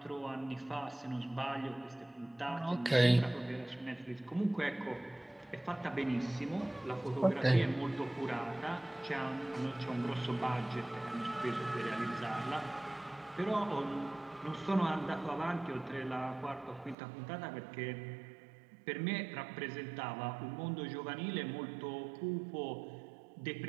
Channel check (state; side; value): drops out; left; at 16.9 s